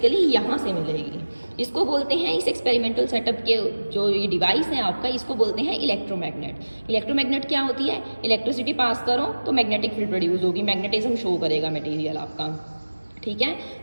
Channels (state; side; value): inverted; both; correlation -1.00